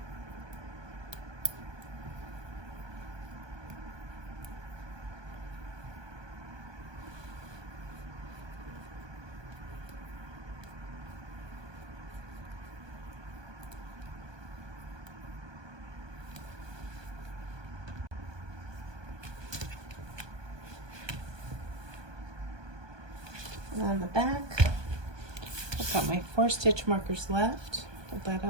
On the back, I've got my 4 stitch markers left. Hold that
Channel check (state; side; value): late; left; 1.2 ms